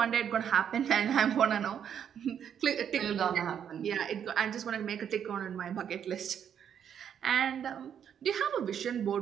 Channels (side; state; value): left; quieter; 8.6 dB